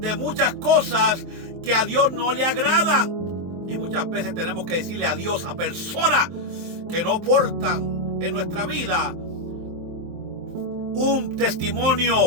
muchas cosas que a Dios no le agradan. Y muchas veces tenemos que decirle adiós a personas que no aportan en nuestra vida un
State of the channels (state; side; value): late; left; 23 ms